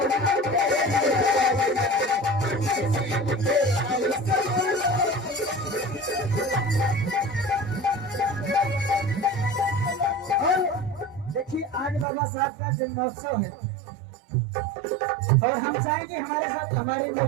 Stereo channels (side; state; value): left; drops out; at 12.1 s